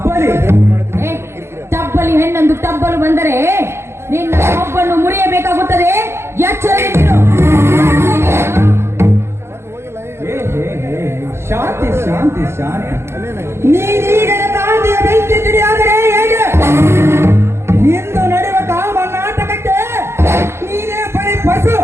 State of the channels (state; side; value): late; left; 0.12 ms